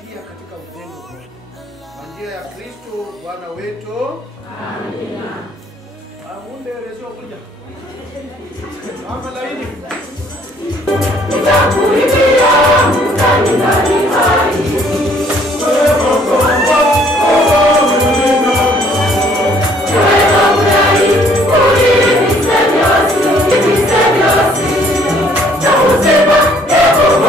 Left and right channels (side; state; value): both; normal; correlation 0.62